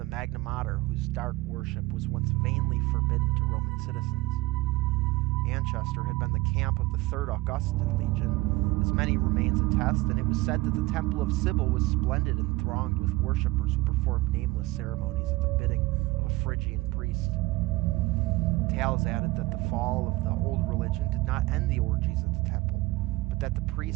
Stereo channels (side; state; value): left; quieter; 20.8 dB